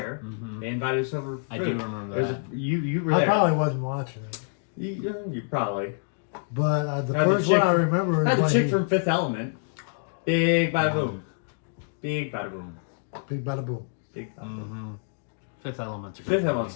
Mhm. They invited us over. For I food. do remember There's that. you were I there. probably wasn't watching it. You probably. But the Had the first one chick- I remember is Had the when chick he, from Fifth Element. Big by boom. Big bada boom. Big bada boom. Big bada boom. Mm-hmm. Fifth Element's a good Fifth movie.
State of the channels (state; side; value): silent; right; digital silence